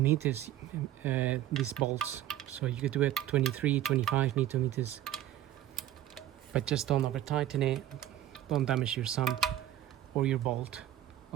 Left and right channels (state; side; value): quieter; left; 12.5 dB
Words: meters, these bolts. So you could do it 23, 25 Newton meters, but just don't over tighten it. Don't damage your sump or your bolt,